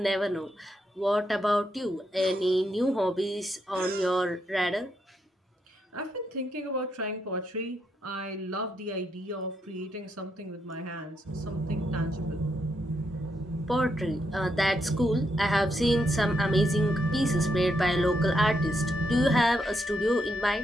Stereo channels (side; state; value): both; normal; correlation 0.80